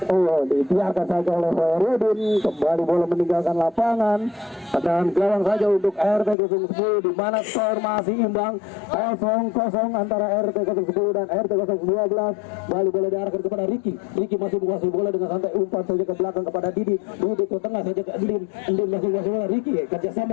dibiarkan saja oleh Hoerudin. Kembali bola meninggalkan lapangan, tendangan gawang saja untuk RT 010, di mana skor masih imbang 0-0 antara RT 010 dan RT 012. Kembali bola diarahkan kepada Riki masih menguasai bola dengan santai, umpan saja ke belakang kepada Didi ke tengah saja ke Endin masih menguasai bola. Riki kerjasama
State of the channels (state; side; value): drops out; right; at 6.4 s